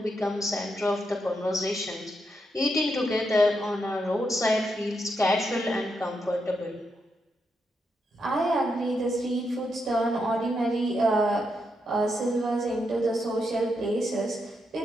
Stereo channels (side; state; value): both; normal; correlation 0.82